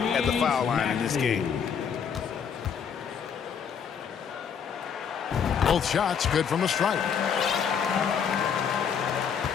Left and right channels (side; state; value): right; quieter; 7.2 dB